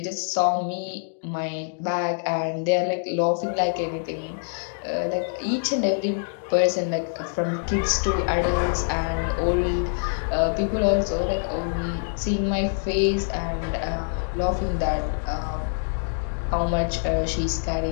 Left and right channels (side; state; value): right; silent; digital silence